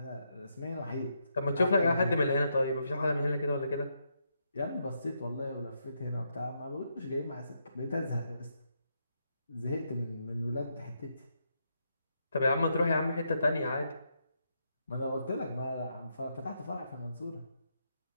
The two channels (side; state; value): both; inverted; correlation -0.80